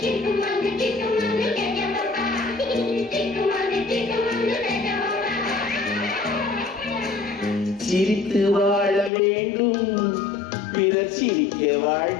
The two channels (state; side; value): drops out; right; at 9.1 s